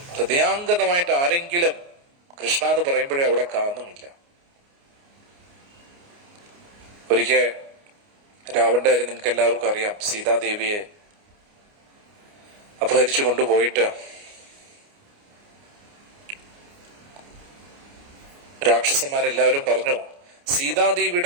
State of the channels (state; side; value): late; left; 29 ms